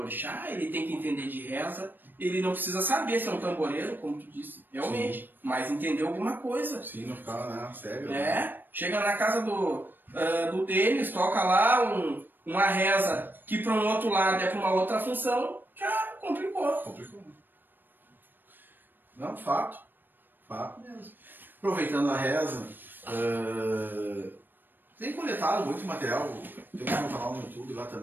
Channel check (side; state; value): left; late; 0.093 ms